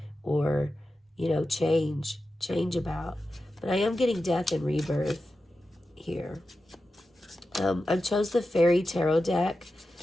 or, you know, change about. But I am getting death and rebirth here. I chose the Fairy Tarot deck.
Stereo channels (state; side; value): normal; both; correlation 0.92